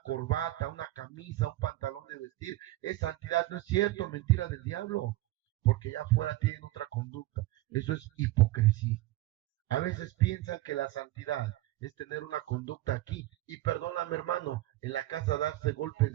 corbata, una camisa, un pantalón de vestir, es santidad. No es cierto, mentira del diablo, porque ya afuera tienen otra conducta. Eso es hipocresía. A veces piensan que la santidad es tener una conducta aquí. Y perdóname, hermano, en la casa darse golpes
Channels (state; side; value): quieter; left; 17.1 dB